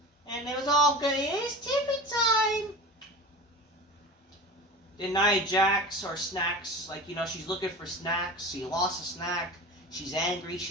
And it was all good. It's Tiffany time. Then Nia Jax or snacks. Like, you know, she's looking for snacks. She lost a snack. She's angry.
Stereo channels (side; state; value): both; normal; correlation 0.33